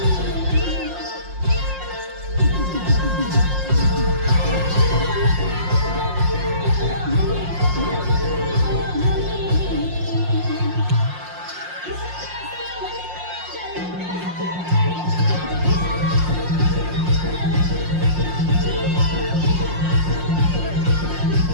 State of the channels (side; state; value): left; late; 5.6 ms